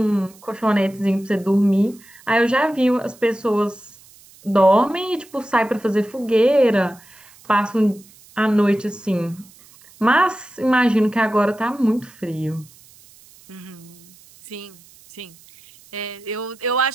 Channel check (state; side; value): noise; right; hiss, 25 dB below the sound